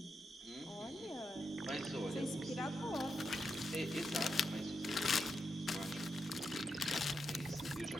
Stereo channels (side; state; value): both; normal; correlation 0.85